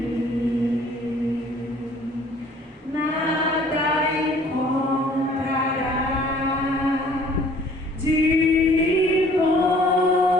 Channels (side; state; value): both; normal; correlation 0.55